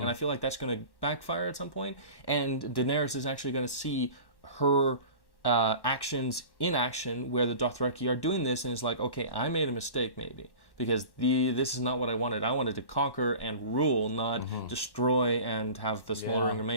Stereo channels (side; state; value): right; late; 1.1 ms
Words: I feel like that's going to backfire at some point, and Daenerys is actually going to see her actions in action where the Dothraki are doing this, and it's like, okay, I made a mistake maybe, because this is not what I wanted. I wanted to conquer and rule, not destroy and have the smoldering